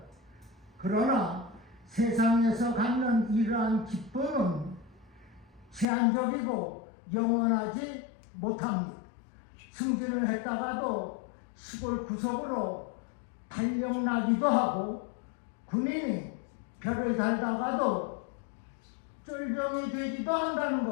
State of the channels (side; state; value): right; drops out; at 5.9 s